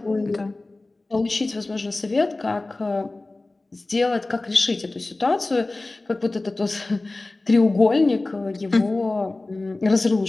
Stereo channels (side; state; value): right; quieter; 3.0 dB